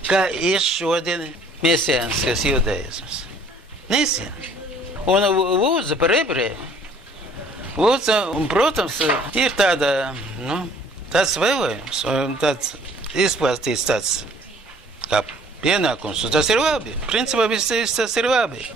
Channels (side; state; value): both; normal; correlation 0.56